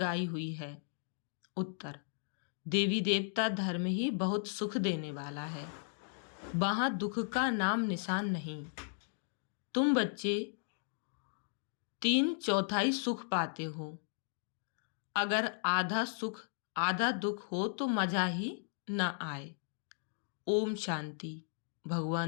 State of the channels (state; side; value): silent; right; digital silence